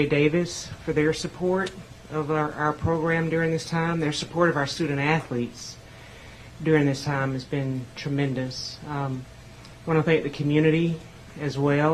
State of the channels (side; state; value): both; identical; correlation 1.00